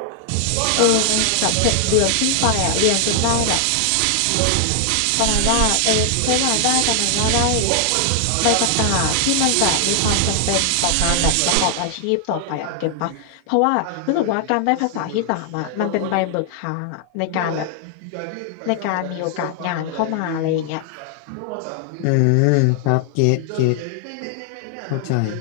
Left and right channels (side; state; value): both; different; correlation 0.00